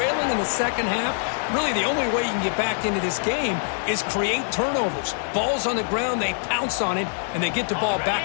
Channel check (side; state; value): right; silent; 58 dB below the other